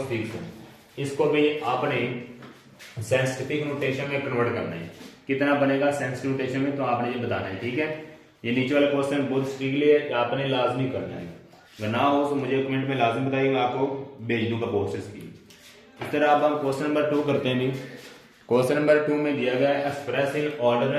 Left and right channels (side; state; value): both; identical; correlation 1.00